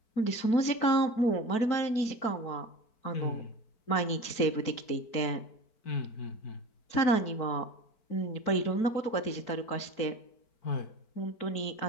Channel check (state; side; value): late; right; 4.5 ms